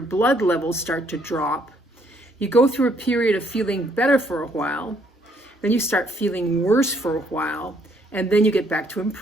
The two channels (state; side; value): normal; both; correlation 0.68